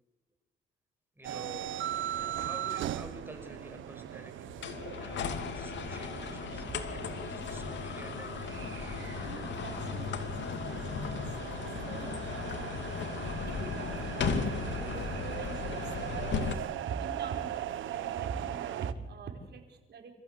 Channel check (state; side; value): normal; both; correlation 0.21